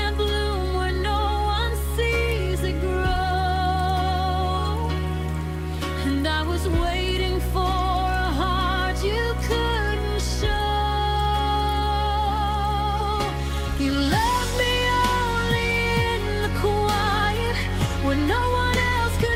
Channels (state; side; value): identical; both; correlation 1.00